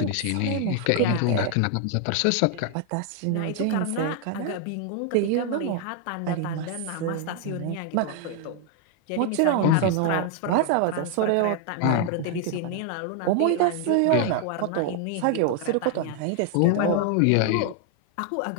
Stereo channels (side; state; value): both; different; correlation 0.00